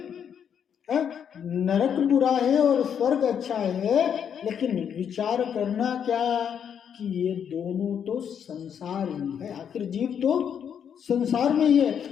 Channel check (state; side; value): quieter; right; 8.2 dB